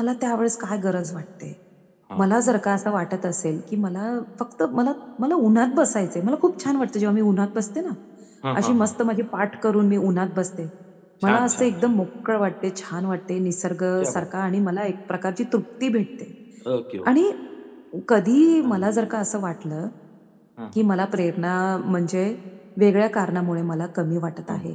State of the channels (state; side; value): identical; both; correlation 1.00